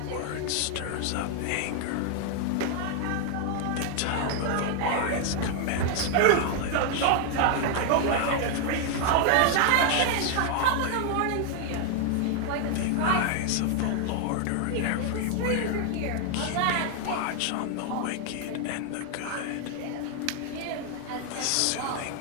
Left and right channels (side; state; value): both; different; correlation 0.00